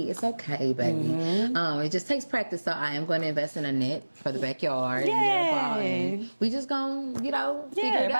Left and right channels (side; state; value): both; inverted; correlation -1.00